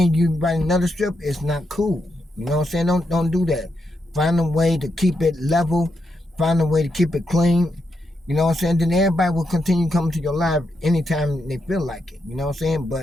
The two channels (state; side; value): normal; both; correlation 0.83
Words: you write another strip, it's not cool. You know what I'm saying? Don't do that. Find a way to keep it level. Find a way to keep it clean. You know what I'm saying? Then everybody will continue coming to your live anytime they feel like it. You know what I'm saying?